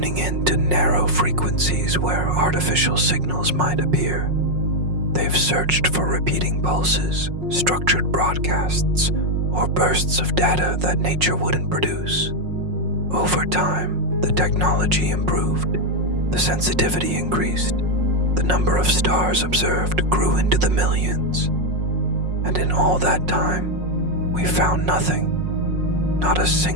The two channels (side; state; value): left; late; 5.5 ms